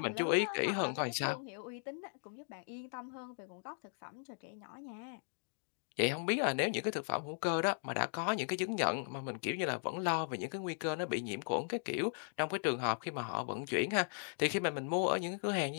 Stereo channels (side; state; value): right; silent; digital silence